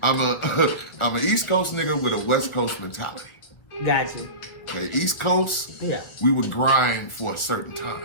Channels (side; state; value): right; late; 1.7 ms